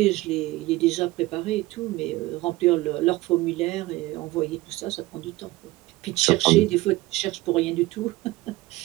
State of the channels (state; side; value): quieter; left; 19.0 dB